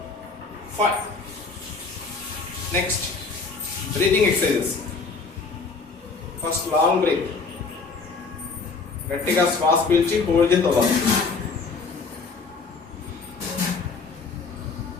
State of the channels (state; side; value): quieter; right; 4.4 dB